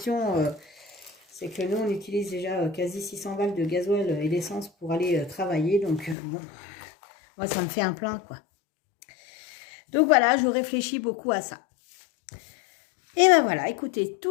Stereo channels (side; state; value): right; drops out; at 6.2 s